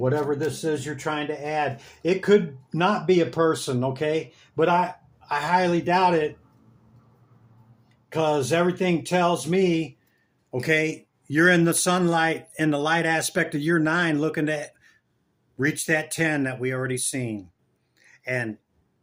this is you're trying to add. It could not be a person, okay? But I highly doubt it because everything tells me, okay, you're in the sunlight, in the light aspect of your 9, looking to reach that 10 that we already seen. And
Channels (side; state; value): both; identical; correlation 1.00